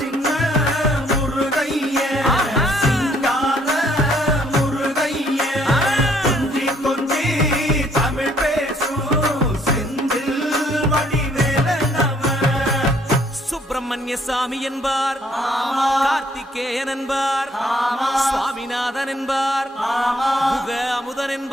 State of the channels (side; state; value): both; normal; correlation 0.65